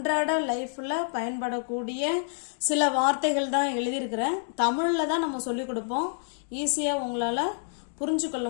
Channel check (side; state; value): right; silent; digital silence